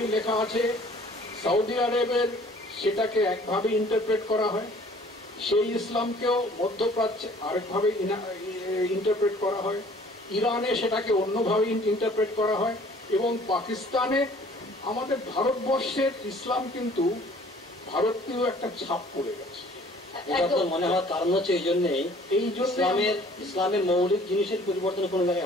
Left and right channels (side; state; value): both; normal; correlation 0.54